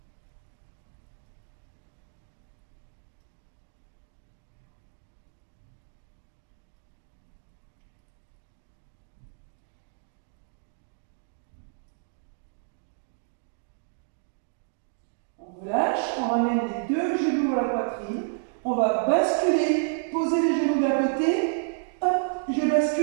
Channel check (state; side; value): silent; left; digital silence